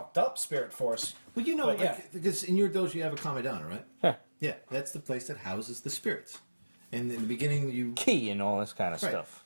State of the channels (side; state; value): both; inverted; correlation -1.00